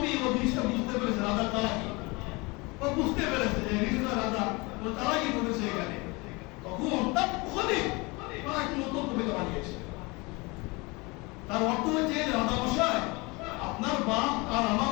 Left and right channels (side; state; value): right; quieter; 25.9 dB